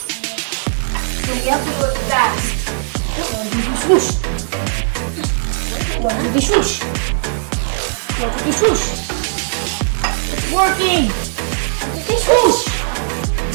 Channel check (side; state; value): left; silent; digital silence